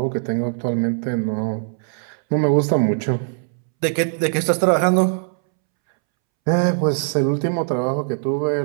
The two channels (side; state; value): left; silent; 65 dB below the other